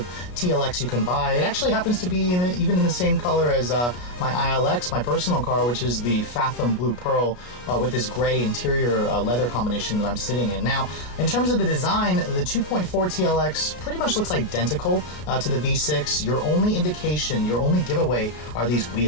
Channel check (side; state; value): right; late; 33 ms